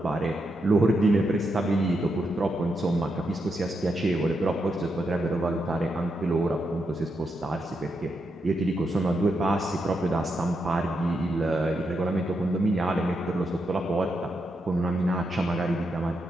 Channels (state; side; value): normal; both; correlation 0.83